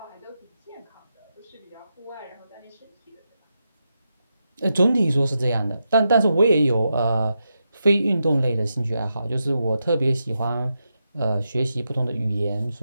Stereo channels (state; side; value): inverted; both; correlation -0.87